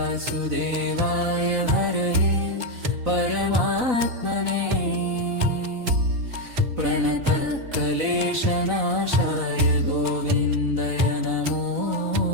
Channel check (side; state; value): left; late; 4.0 ms